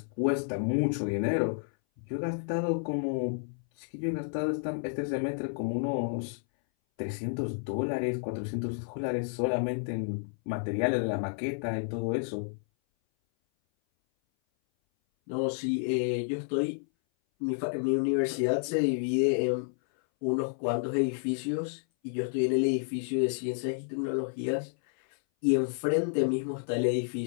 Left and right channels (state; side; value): silent; right; 57 dB below the other